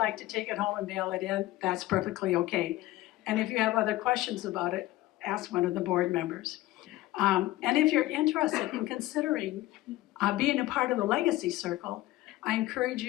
to take it home and mail it in, that's perfectly okay. And if you have other questions about it, ask one of the board members. And if you're interested in considering being a part of the Legacy Circle, I encourage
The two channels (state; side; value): quieter; right; 16.8 dB